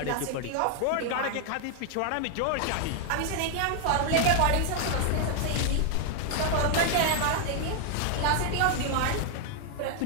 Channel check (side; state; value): both; different; correlation 0.00